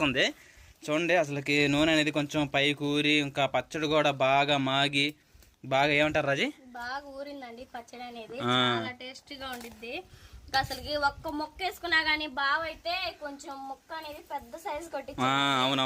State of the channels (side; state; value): both; identical; correlation 1.00